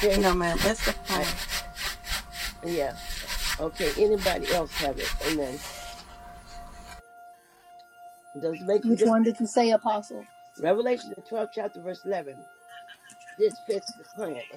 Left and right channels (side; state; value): both; identical; correlation 1.00